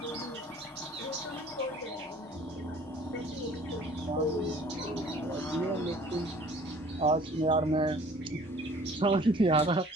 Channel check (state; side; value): normal; both; correlation 0.51